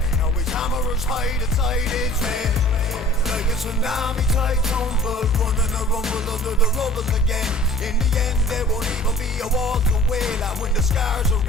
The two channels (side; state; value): both; normal; correlation 0.48